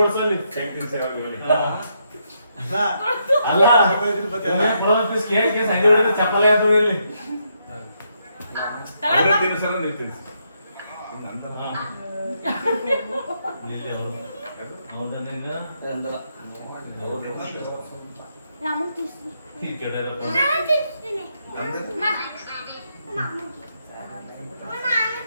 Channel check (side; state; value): both; inverted; correlation -0.78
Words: ಹೊಡ್ಸಲ್ಲಿ ಅಲ್ಲ ಕುಡೋ ಪೀಸ್ ಕೇಕ್ ಸಂಜೆ ಹೊಡಿದ್ರೆ ಚಪ್ಪಲಿ ಆಯ್ತು ಇಲ್ಲಿ ತಿನ್ಸಲ್ಲ ನೀವು ತಿನ್ಸಿ ನಂತರ ಇಲ್ಲಿ ಅವರು ಹೌದಾ ನಿಂಗ ರಾಮನ್ ತಿನ್ಸ್ತೀನಿ. ಈ ಕೆಡರಪ್ಪ ನಾನು ತಿನ್ಸ್ತೀನಿ. ನಾನು